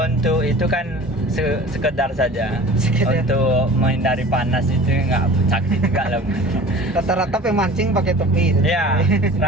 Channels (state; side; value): normal; both; correlation 0.42